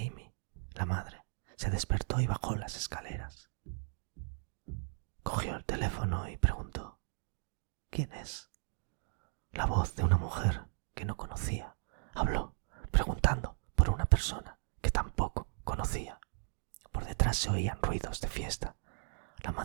la madre, se despertó y bajó las escaleras. Cogió el teléfono y preguntó: ¿quién es? La voz de una mujer que no conocía habló, preguntando por una persona que tampoco conocía. Por detrás se oían ruidos de fiesta. La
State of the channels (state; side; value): silent; left; 54 dB below the other